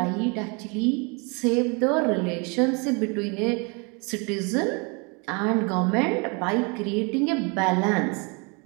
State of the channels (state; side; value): quieter; left; 31.9 dB